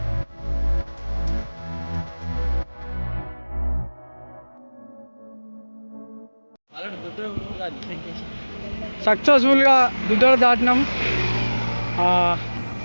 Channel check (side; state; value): both; inverted; correlation -1.00